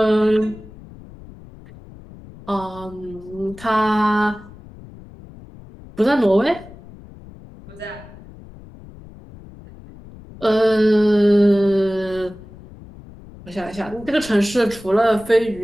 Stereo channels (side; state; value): left; noise; rumble, 19 dB below the sound